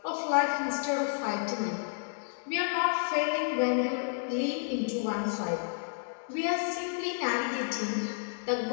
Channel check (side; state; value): right; silent; digital silence